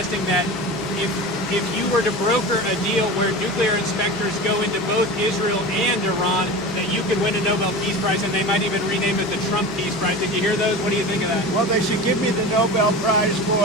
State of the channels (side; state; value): both; normal; correlation 0.31